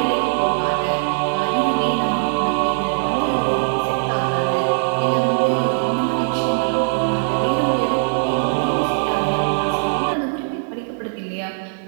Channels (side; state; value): left; silent; digital silence